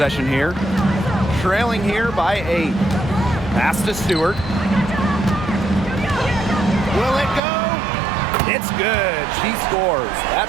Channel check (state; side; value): drops out; left; at 7.4 s